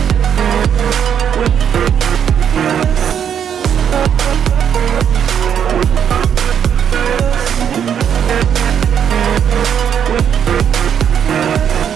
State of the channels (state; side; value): quieter; left; 8.5 dB